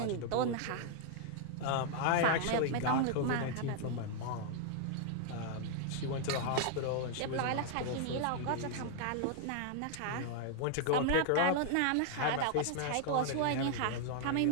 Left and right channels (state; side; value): different; both; correlation 0.00